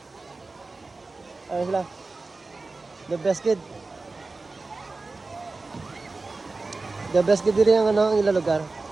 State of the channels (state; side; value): quieter; left; 3.6 dB